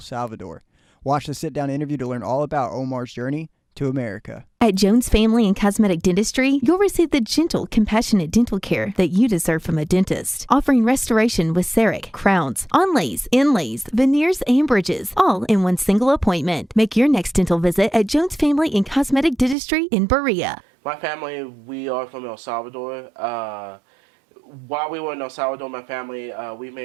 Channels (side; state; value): left; drops out; at 19.6 s